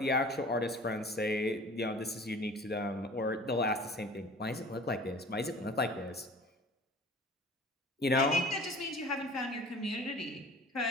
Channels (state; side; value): normal; both; correlation 0.45